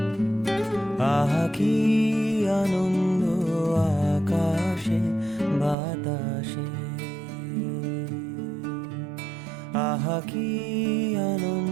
কি আনন্দ আকাশে বাতাসে, আহা কি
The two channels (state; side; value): drops out; left; at 5.8 s